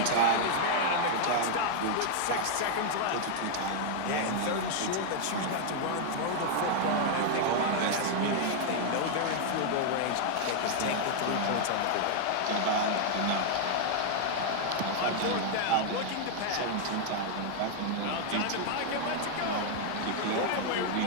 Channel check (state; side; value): different; both; correlation 0.00